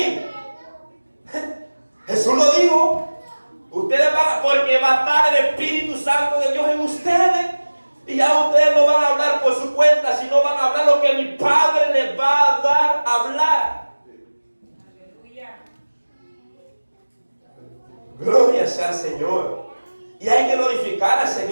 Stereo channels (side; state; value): both; inverted; correlation -1.00